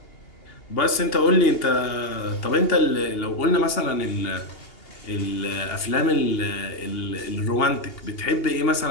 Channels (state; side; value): late; right; 2.8 ms